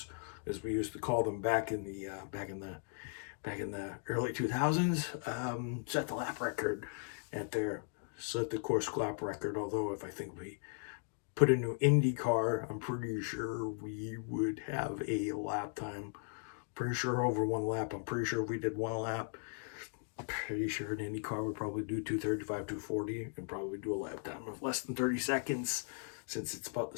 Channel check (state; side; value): silent; right; 53 dB below the other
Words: as we used to call them back in the early 2000s, set the lap record set the course lap record. Although if I think we put a new Indy car, I'm pretty sure we would have a lap time. Pretty sure over one lap. I'm pretty sure if we did one lap, I'm pretty sure an Indy car would probably do 235, 240, and probably do a lap time of less than 30 seconds, since it's about the